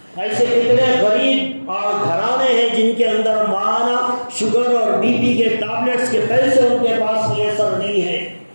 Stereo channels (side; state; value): both; inverted; correlation -1.00